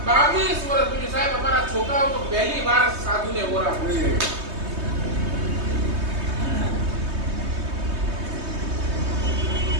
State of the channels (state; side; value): late; left; 3.2 ms